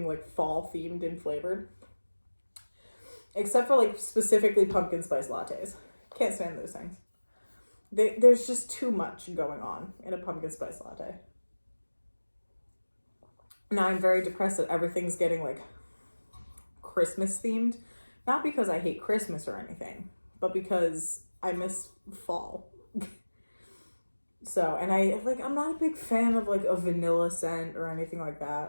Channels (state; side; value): inverted; both; correlation -1.00